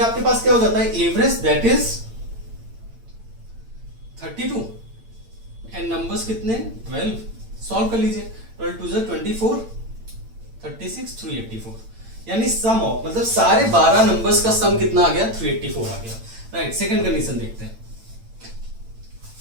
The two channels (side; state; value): left; late; 8.9 ms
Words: पास क्या हो जाता है, average that is 32 and numbers कितने 12। सॉल्व कर लीजिए, 12 2 24, 36 384, यानी सम ऑफ मतलब सारे 12 नंबर्स का सम कितना आ गया 384 आ गया। राइट, सेकंड कंडीशन देखते हैं।